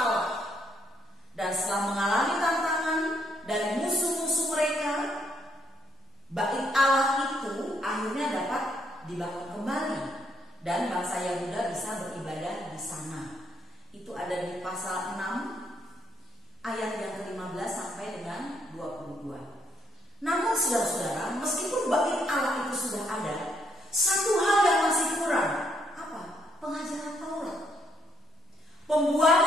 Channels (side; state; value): both; normal; correlation 0.73